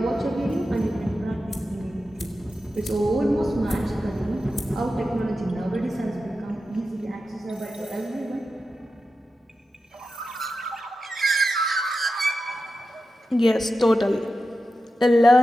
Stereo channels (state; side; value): normal; both; correlation 0.91